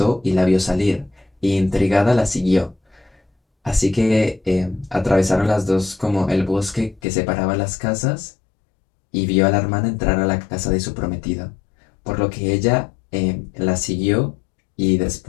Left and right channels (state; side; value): drops out; right; at 7.0 s